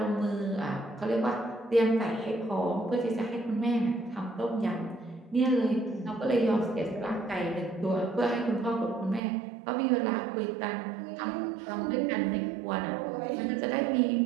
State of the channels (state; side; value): drops out; left; at 9.2 s